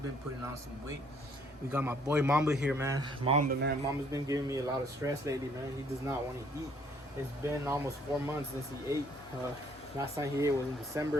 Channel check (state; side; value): normal; both; correlation 0.63